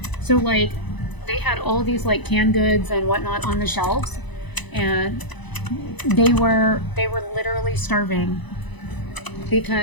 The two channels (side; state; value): right; late; 1.0 ms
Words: So like, they had all these like canned goods and whatnot on the shelves, and they were literally starving